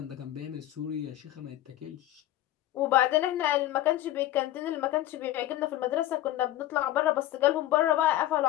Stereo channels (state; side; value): quieter; right; 14.3 dB